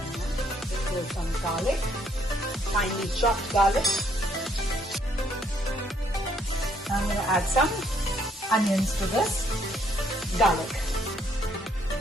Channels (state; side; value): normal; both; correlation 0.68